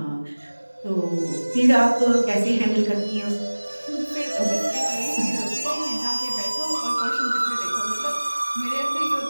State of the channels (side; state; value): both; inverted; correlation -1.00